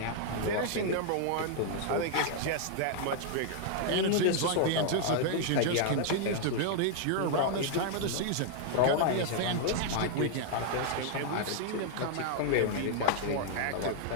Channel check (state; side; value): different; both; correlation -0.01